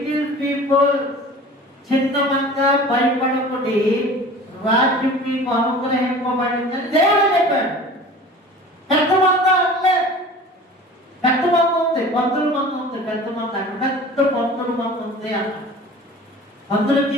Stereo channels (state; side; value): normal; both; correlation 0.41